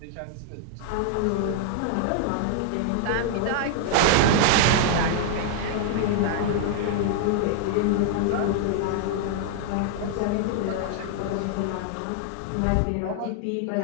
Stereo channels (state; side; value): different; both; correlation 0.00